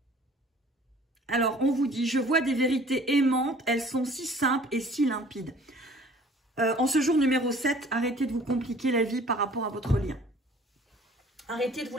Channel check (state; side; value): normal; both; correlation 0.51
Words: Alors, on vous dit, je vois des vérités aimantes, elles sont si simples et si limpides. En ce jour numéro 7, arrêtez de vous compliquer la vie par rapport à votre lien. Arrêtez de vous